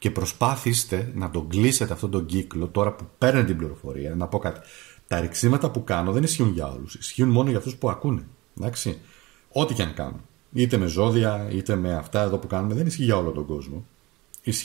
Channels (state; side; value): quieter; left; 21.6 dB